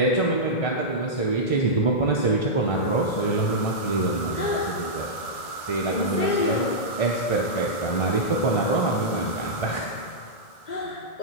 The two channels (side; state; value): right; late; 1.4 ms